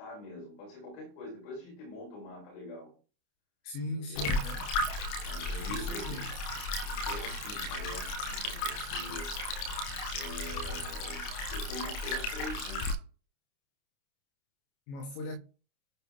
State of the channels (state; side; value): late; right; 29 ms